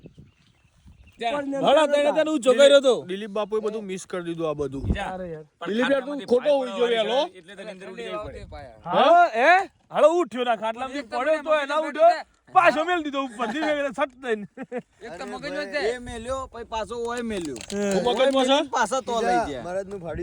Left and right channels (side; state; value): both; identical; correlation 1.00